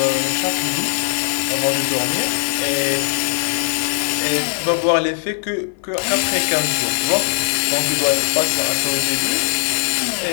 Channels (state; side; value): silent; right; 56 dB below the other